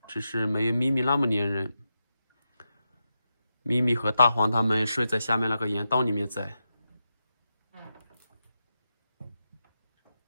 只是没有咪咪那么粘人。咪咪和大黄他们睡在下面那个岩洞里面在。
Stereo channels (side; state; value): both; inverted; correlation -0.89